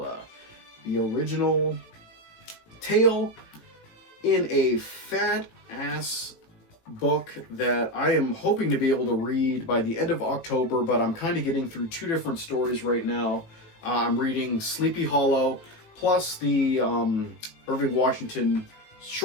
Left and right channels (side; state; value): right; late; 18 ms